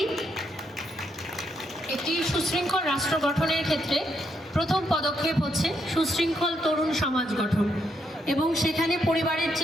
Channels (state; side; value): normal; both; correlation 0.78